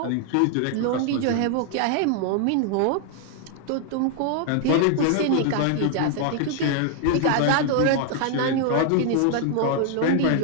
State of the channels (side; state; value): both; different; correlation 0.00